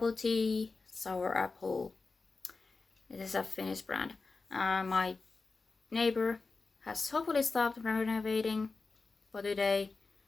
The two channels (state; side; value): quieter; right; 4.0 dB